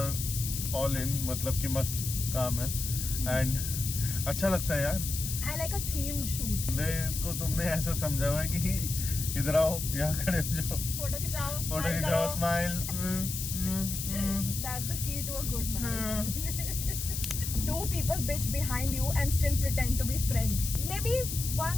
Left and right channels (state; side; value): noise; left; hiss, 5 dB below the sound